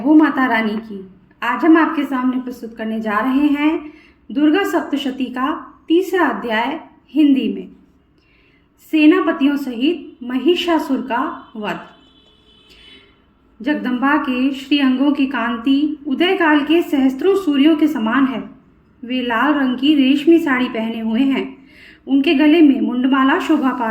माता रानी की। आज हम आपके सामने प्रस्तुत करने जा रहे हैं दुर्गा सप्तशती का तीसरा अध्याय हिंदी में। सेनापतियों सहित महिषासुर का वध। जगदम्बा के श्री अंगों की कांति उदय काल के सहस्त्रों सूर्यों के समान है। वे लाल रंग की रेशमी साड़ी पहने हुए हैं। उनके गले में मुंडमाला शोभा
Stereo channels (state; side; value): identical; both; correlation 1.00